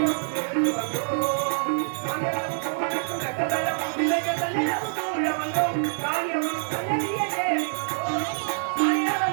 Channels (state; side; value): silent; left; digital silence